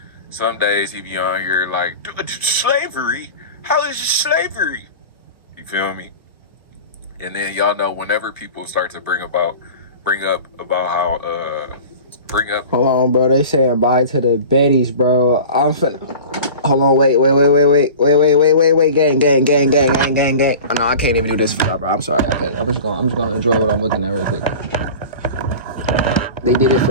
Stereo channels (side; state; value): both; inverted; correlation -0.38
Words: Some days he be on here like, slavery? How is it slavery? You feel me? And then y'all know whenever people start to bring up how Hold on, bro. They saying bye to the Bettys, bro. I'm finna. Hold on, wait, gang. Oh, no, I can't even do this for y'all, bro. I'm sorry, I can't. I'm just gonna enjoy what I'm looking at real quick. They did it